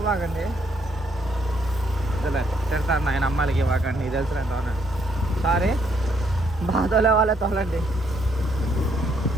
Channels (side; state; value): both; normal; correlation 0.71